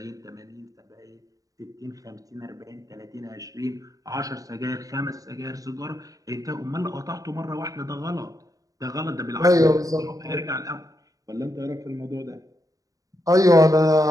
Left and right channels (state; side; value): late; left; 0.17 ms